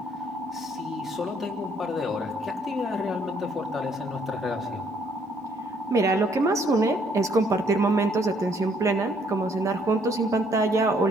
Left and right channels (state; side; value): normal; both; correlation 0.66